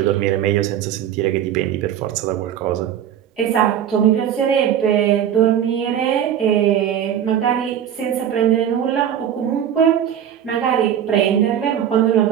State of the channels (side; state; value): left; quieter; 9.7 dB